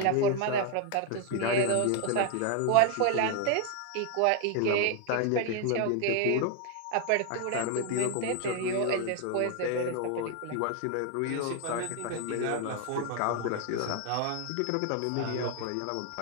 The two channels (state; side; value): different; both; correlation 0.00